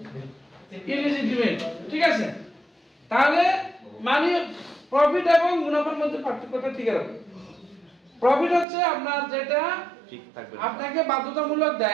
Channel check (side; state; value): left; drops out; at 8.7 s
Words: ইলিজিটিমেট, ঠিক আছে। তাহলে মানে প্রফিট এবং মুনাফার মধ্যে পার্থক্যটা ঠিক আছে। প্রফিট হচ্ছে আপনার যেটা ঠিক থাকবে আপনাকে বাধ্যতামূলক